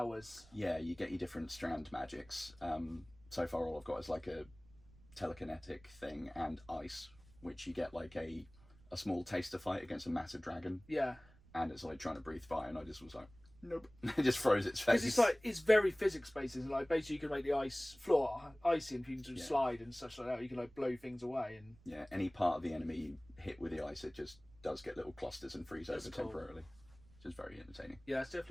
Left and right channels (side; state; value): right; noise; rumble, 25 dB below the sound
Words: Yeah, you get your different strand magics. So far all I've got is like a telekinetic thing and ice, which you get like a small taster fight against a massive dragon. Yeah. And it's like trying to breathe fire and I just was like, nope. It just froze its face. Because it's like, it's very physics based, isn't it? Like basically you can make the ice floor icy and people can slide and such like that. You can like blow things away and... Yeah, any part of the enemy you hit with the ice, it just does get little clusters and freeze over temporarily. Which is very entertaining. Yeah, it's